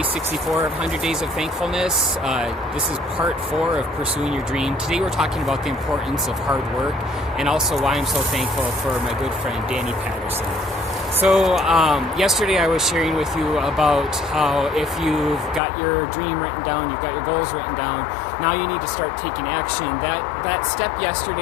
64 of 100 Days of Thankfulness. This is part 4 of Pursuing Your Dream. Today we're talking about the importance of hard work and also why I'm so thankful for my good friend Danny Patterson. So yesterday I was sharing with you about how if you've got your dream written down, you've got your goals written down, now you need to start taking action. That step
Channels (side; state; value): right; drops out; at 15.6 s